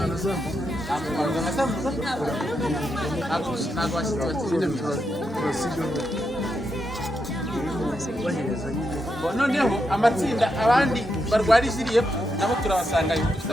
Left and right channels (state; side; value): normal; both; correlation 0.83